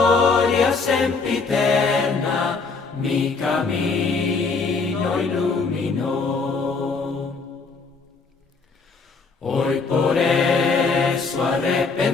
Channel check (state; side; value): quieter; right; 4.4 dB